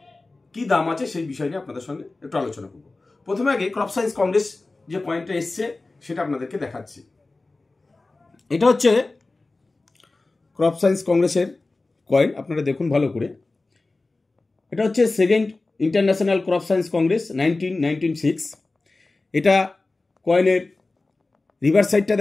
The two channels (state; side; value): quieter; right; 3.3 dB